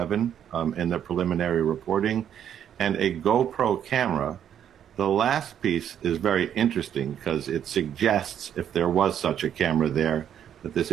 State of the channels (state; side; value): quieter; left; 9.5 dB